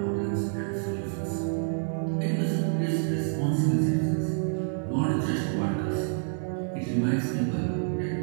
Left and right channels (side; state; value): left; silent; 59 dB below the other